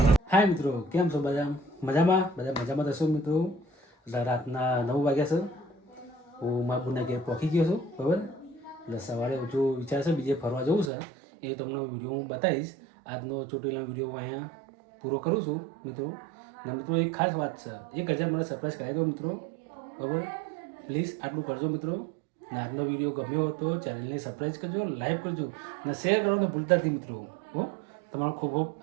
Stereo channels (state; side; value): drops out; left; at 10.9 s